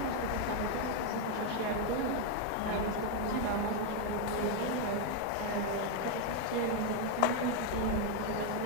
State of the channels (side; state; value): both; different; correlation 0.01